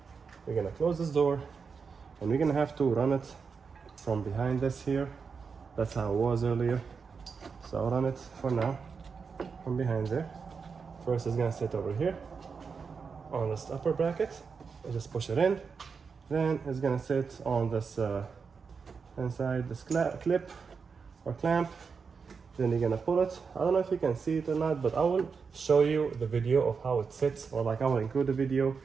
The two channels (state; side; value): quieter; left; 5.5 dB